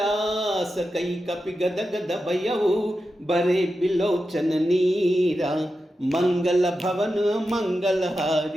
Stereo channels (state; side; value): normal; both; correlation 0.90